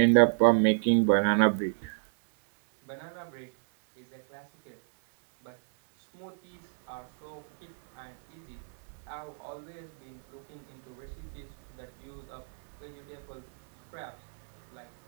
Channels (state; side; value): silent; left; digital silence